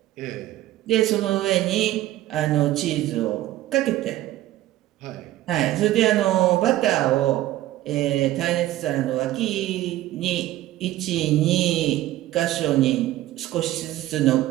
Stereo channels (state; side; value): quieter; left; 15.0 dB